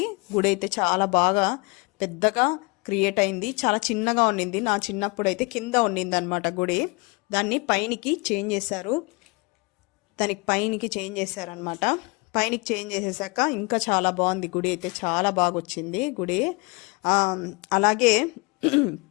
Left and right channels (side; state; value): right; quieter; 27.9 dB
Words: గుడి అయితే చాలా బాగా పెద్దగా క్రియేట్ అయింది. చాలా చిన్నగా ఉండింది, నా చిన్నప్పుడు అయితే కింద ఉండింది అనమాట గుడి. దాన్ని పైనికి చేంజ్ చేశారు, పైనికి చేంజ్ చేసేసాక ఇంకా చాలా బాగుంది గుడి అయితే. చాలా బాగా వచ్చింది గుడి. అలాగే